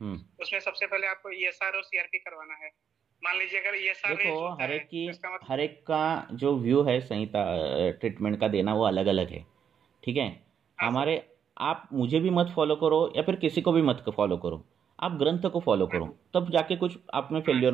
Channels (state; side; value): quieter; left; 7.9 dB